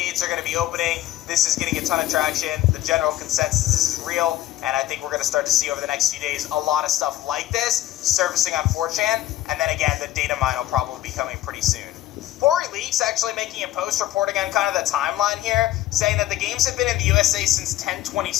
are going to be opening. This is getting a ton of traction. The general consensus is real, and I think we're going to start to see over the next few days a lot of stuff like this surfacing on 4chan, and then again, the data mine will probably be coming pretty soon. Pori Leaks actually making a post reporting on kind of the timeline here, saying that the games have been in the USA since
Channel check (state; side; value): quieter; right; 14.3 dB